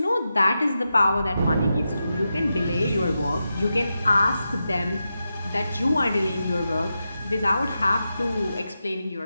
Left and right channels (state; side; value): inverted; both; correlation -0.89